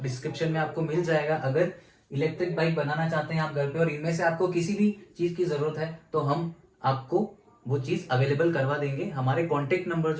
डिस्क्रिप्शन में आपको मिल जाएगा। अगर इलेक्ट्रिक बाइक बनाना चाहते हैं आप घर पे और इनमें से आपको किसी भी चीज की जरूरत है तो हम आपको वो चीज अवेलेबल करवा देंगे। हमारे कांटेक्ट नंबर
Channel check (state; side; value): identical; both; correlation 1.00